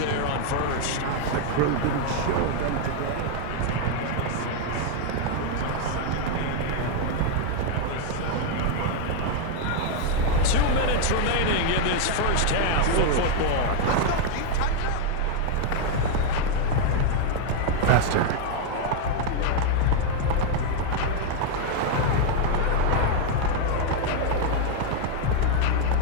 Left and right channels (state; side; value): different; both; correlation 0.00